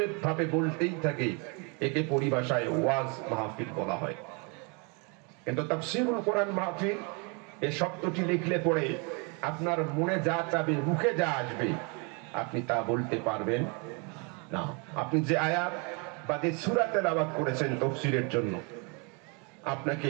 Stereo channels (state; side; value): quieter; left; 33.2 dB